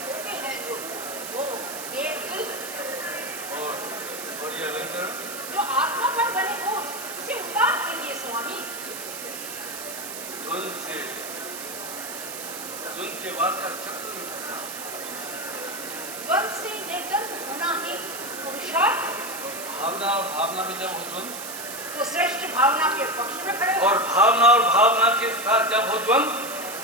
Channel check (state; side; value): noise; right; hiss, 8 dB below the sound